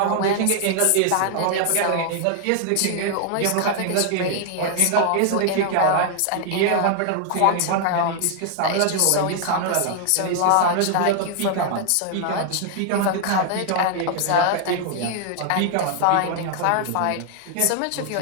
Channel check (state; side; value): different; both; correlation 0.00